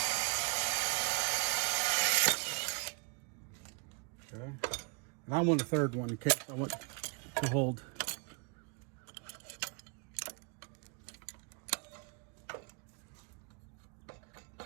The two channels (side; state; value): left; quieter; 34.6 dB